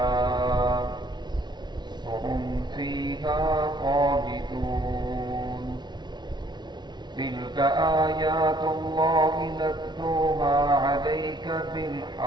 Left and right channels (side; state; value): left; late; 0.21 ms